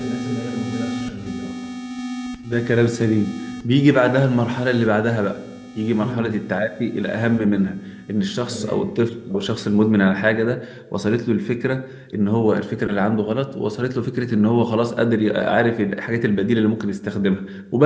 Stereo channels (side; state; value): both; identical; correlation 1.00